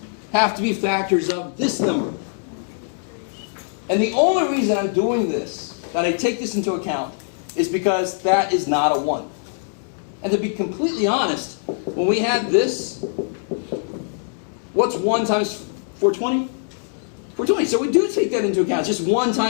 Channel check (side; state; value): right; silent; digital silence